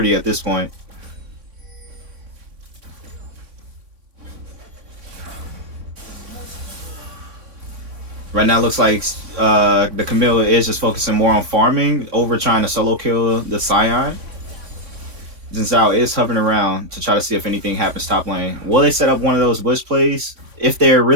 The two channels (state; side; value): late; left; 3.5 ms